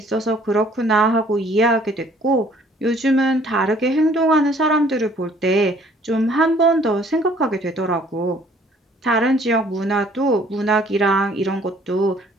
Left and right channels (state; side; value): normal; both; correlation 0.58